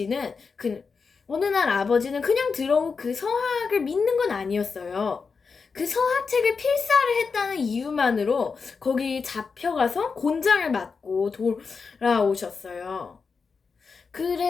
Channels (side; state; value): right; quieter; 5.1 dB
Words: 그 어느 날 아버지는 그냥 들어온 그 서학을 믿는 건 아니었어요. 그 서학책을 필사를 했다는 이유만으로 거기 잡혀가서 곤장을 맞고 돌아오셨어요.